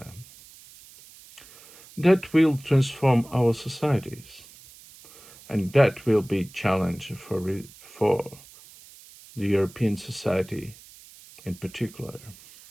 That will transform our societies, and that will be a challenge for the European society in particular.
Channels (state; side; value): noise; right; hiss, 22 dB below the sound